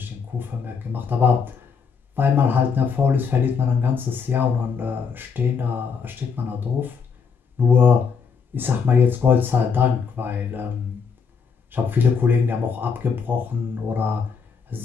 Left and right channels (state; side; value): quieter; right; 5.9 dB